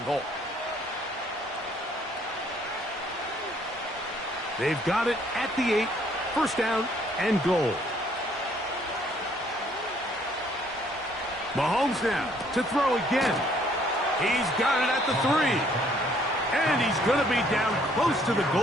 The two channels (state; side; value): normal; both; correlation 0.64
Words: goal. They've got it at the 8. 1st down and goal. Mahomes now to throw again. He's got it at the 3. And he's going to be down close to the